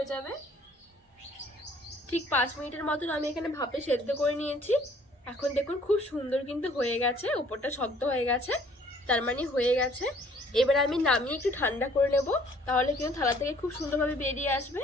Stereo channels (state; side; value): normal; both; correlation 0.58